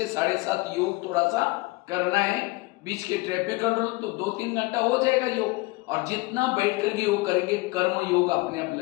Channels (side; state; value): right; quieter; 22.8 dB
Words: 7:30 योग थोड़ा सा करना है। बीच के ट्रैफिक कंट्रोल तो 2-3 घंटा हो जाएगा योग, और जितना बैठ करके योग करेंगे कर्म योग अपने आप